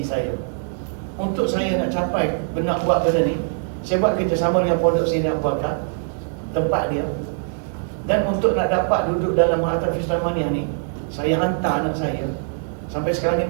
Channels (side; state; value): left; silent; digital silence